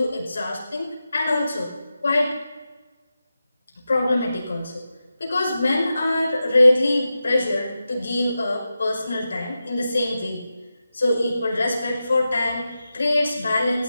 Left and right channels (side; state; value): both; inverted; correlation -0.92